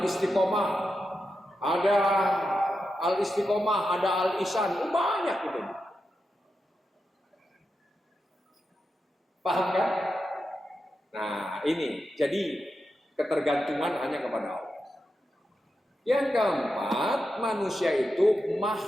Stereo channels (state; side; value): normal; both; correlation 0.88